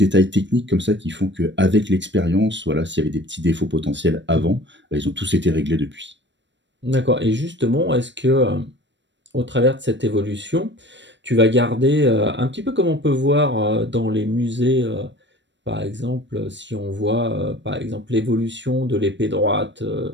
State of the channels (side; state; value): left; late; 0.53 ms